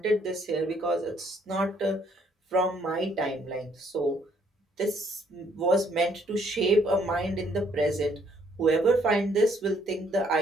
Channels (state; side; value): normal; both; correlation 0.67